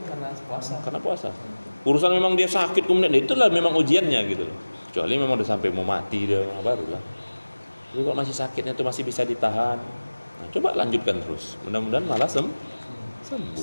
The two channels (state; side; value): inverted; both; correlation -1.00